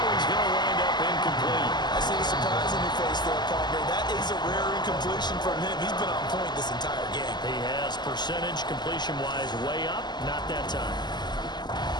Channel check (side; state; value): right; late; 0.21 ms